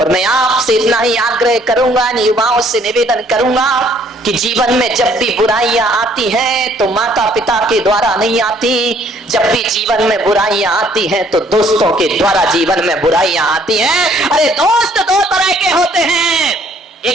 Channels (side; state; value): both; normal; correlation 0.62